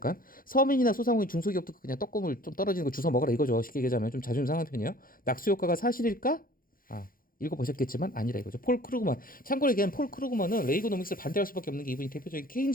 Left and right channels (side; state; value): right; late; 0.41 ms